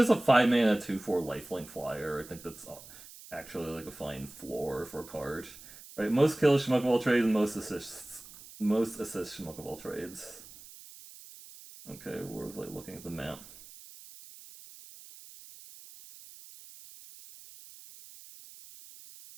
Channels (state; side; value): noise; right; hiss, 18 dB below the sound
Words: a 5-mana 2/4 lifelink flyer. I think that's actually, like, a fine floor for a card. Right, most kills Schmuck of all trades and most assists. Most assists Schmuck of all trades. Okay, we're like looking at the map.